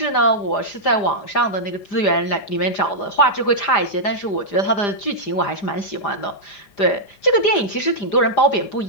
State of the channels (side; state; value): right; late; 5.0 ms